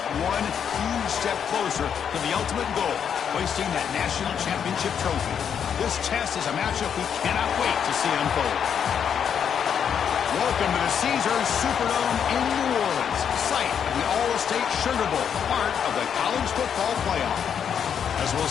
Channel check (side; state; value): right; quieter; 7.9 dB